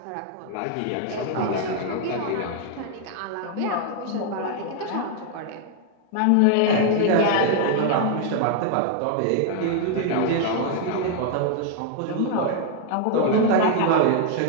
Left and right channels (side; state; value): both; different; correlation 0.00